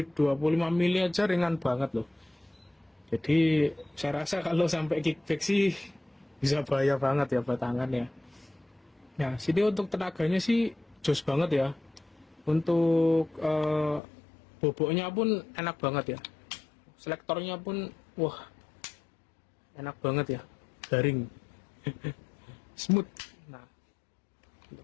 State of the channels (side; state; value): right; drops out; at 14.0 s